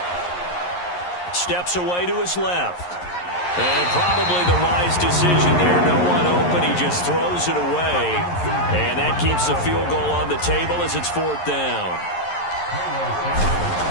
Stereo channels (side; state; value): right; late; 11 ms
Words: Steps away to his left. And probably the wise decision there. No one open. He just throws it away. And that keeps the field goal on the table as it's 4th down.